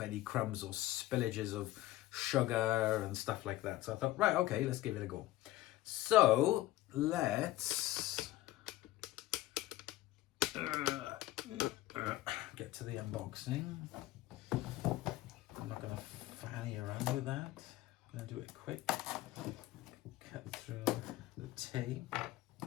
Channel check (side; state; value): right; quieter; 16.2 dB